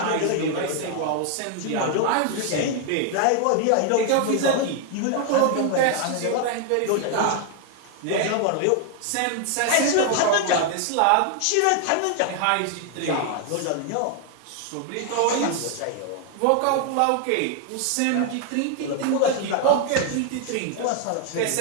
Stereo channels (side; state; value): both; different; correlation 0.00